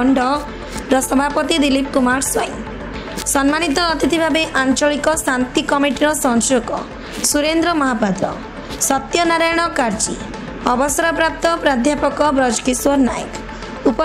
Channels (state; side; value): identical; both; correlation 1.00